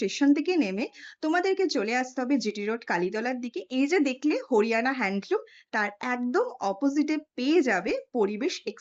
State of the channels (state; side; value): identical; both; correlation 1.00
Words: থেকে নেমে তোমাদেরকে চলে আসতে হবে জিটি রোড কালীতলার দিকে। এই যে দেখলে হরিয়ানা হ্যান্ডলুম, তার একদম অপোজিটে পেয়ে যাবে পরিবেশ